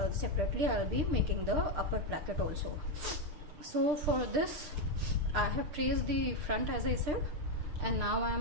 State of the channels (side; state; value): left; late; 6.6 ms